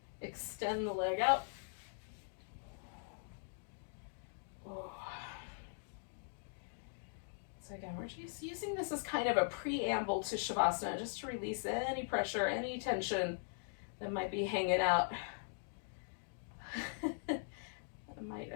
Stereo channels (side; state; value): right; silent; digital silence